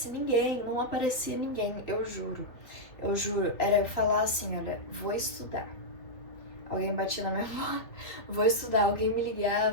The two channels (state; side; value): late; right; 3.0 ms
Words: ninguém, não aparecia ninguém, eu juro. Eu juro, era eu falar assim, olha, vou estudar. Alguém batia na minha porta, vou estudar, alguém me